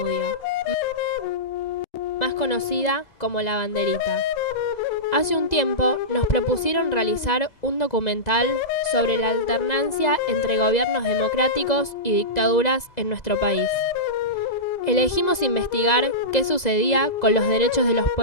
más conocida como La Banderita. Hace un tiempo nos propusieron realizar un documental sobre la alternancia entre gobiernos democráticos y dictaduras en nuestro país. Elegimos investigar qué sucedía con los derechos de los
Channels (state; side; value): late; right; 2.0 ms